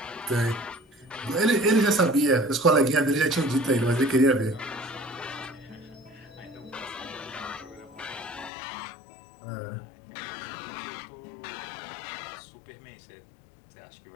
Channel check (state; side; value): drops out; right; at 8.5 s